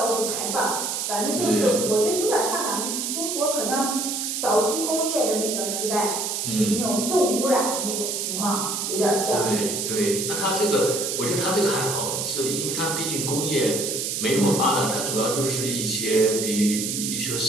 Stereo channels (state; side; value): noise; right; hiss, 2 dB below the sound